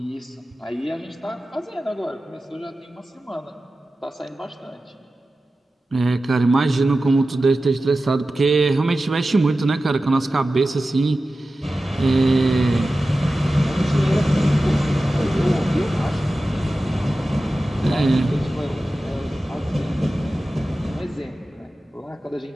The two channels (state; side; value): normal; both; correlation 0.94